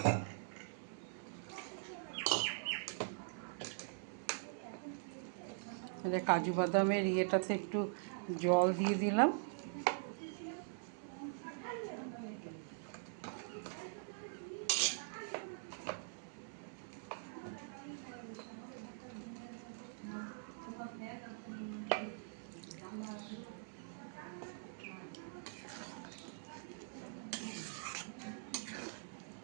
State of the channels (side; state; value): left; silent; digital silence